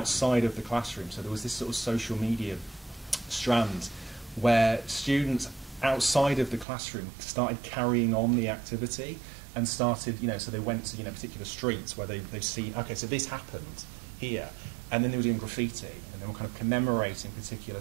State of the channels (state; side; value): drops out; left; at 6.7 s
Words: of the classroom. So there was this sort of social media strand where students outside of the classroom started carrying on the activity and started, so they went to, particular streets where they've seen, okay, so this happened here, and then they were doing graffiti, and they were kind of commemorating particular